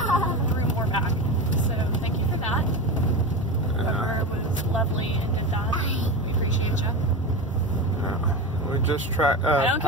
threw more back. So thank you for that. Whoever was lovely and did that, we appreciate you. We just I don't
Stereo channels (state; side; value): normal; both; correlation 0.23